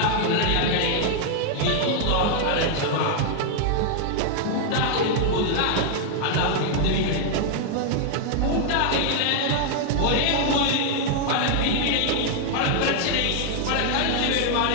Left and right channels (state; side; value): different; both; correlation 0.00